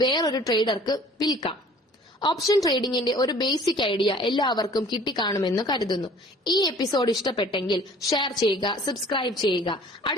വേറൊരു ട്രേഡർക്ക് വിൽക്കാം. ഓപ്ഷൻ ട്രേഡിംഗിന്റെ ഒരു ബേസിക് ഐഡിയ എല്ലാവർക്കും കിട്ടിക്കാണുമെന്ന് കരുതുന്നു. ഈ എപ്പിസോഡ് ഇഷ്ടപ്പെട്ടെങ്കിൽ ഷെയർ ചെയ്യുക, സബ്സ്ക്രൈബ് ചെയ്യുക.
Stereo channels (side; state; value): both; normal; correlation 0.51